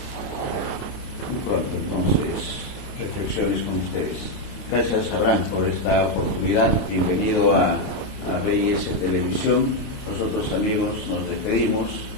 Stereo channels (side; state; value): right; late; 28 ms